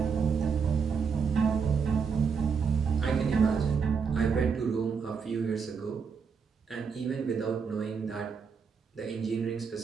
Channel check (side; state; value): left; quieter; 5.9 dB